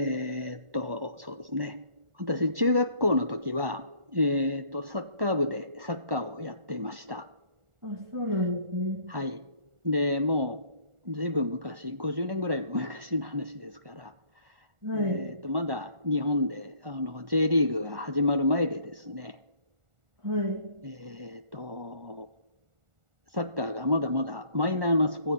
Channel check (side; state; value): left; late; 1.4 ms